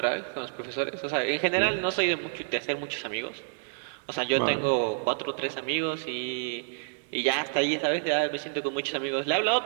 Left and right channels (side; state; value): left; silent; digital silence